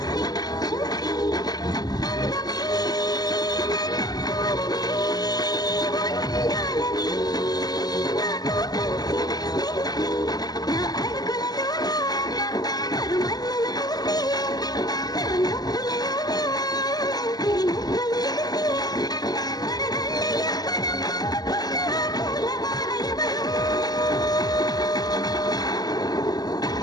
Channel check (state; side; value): late; right; 0.19 ms